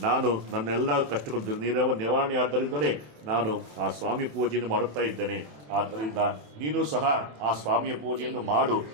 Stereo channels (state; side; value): late; left; 27 ms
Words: ನಾನು ನನ್ನೆಲ್ಲ ಕಷ್ಟಗಳು ನಿವಾರಣೆ ಆದ್ದರಿಂದಲೇ ನಾನು ಆ ಸ್ವಾಮಿ ಪೂಜೆಯನ್ನು ಮಾಡುತ್ತಾ ಇದ್ದೇನೆ. ಆದ್ದರಿಂದ ನೀನು ಸಹ ಆ ಸ್ವಾಮಿಯ ಪೂಜೆಯನ್ನು ಮಾಡು,